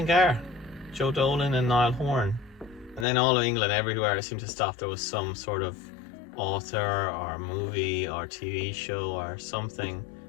Joe Dolan and Niall Horan. And then all of England, everywhere I seemed to stop, there was some sort of author or movie or TV show or something,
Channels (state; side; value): drops out; right; at 3.1 s